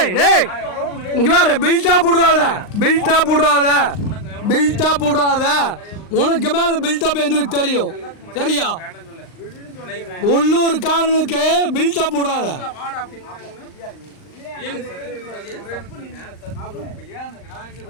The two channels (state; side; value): late; right; 39 ms